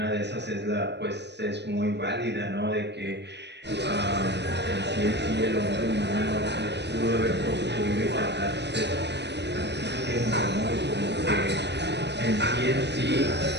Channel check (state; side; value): late; left; 0.50 ms